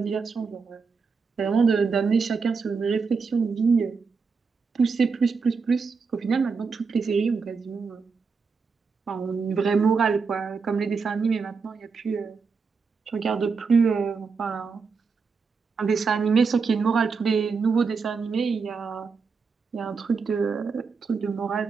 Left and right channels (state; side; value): quieter; left; 5.1 dB